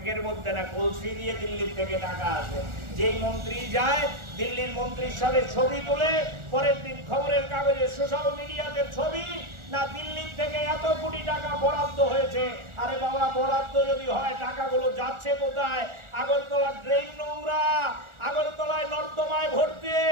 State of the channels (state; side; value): late; left; 1.4 ms